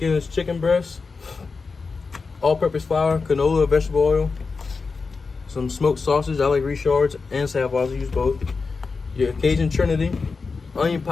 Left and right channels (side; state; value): right; quieter; 4.5 dB